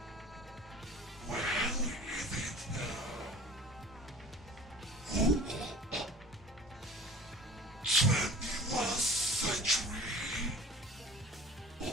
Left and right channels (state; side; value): normal; both; correlation 0.42